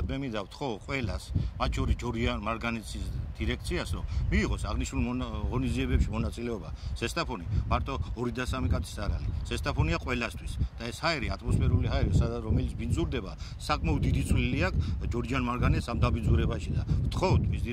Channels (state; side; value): identical; both; correlation 1.00